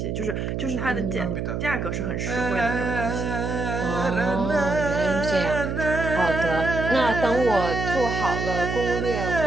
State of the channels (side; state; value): right; noise; hum, 2 dB below the sound